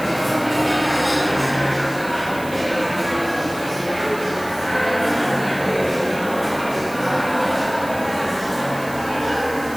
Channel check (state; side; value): noise; right; hiss, 17 dB below the sound